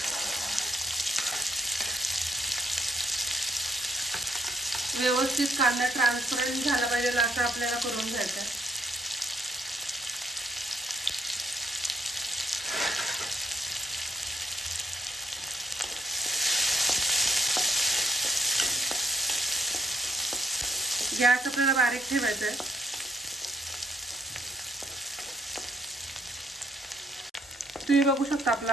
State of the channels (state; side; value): normal; both; correlation 0.71